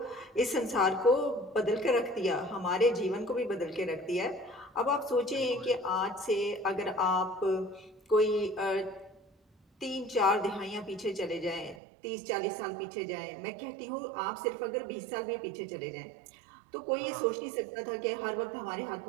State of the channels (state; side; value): drops out; left; at 11.8 s